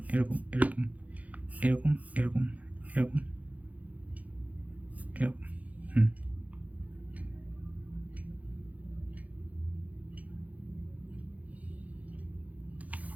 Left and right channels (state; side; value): late; left; 0.073 ms